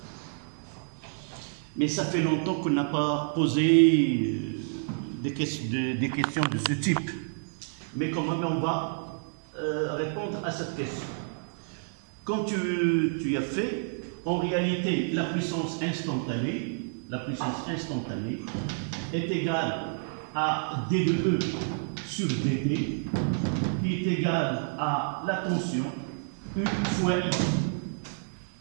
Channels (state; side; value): silent; left; 58 dB below the other